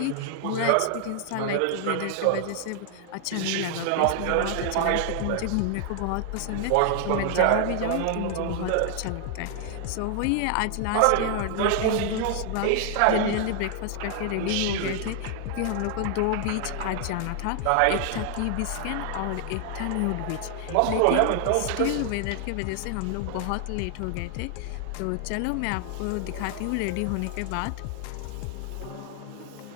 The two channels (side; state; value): both; different; correlation 0.00